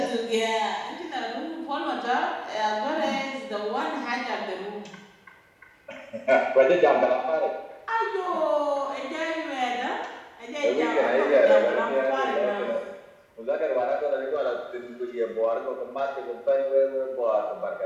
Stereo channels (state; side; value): identical; both; correlation 1.00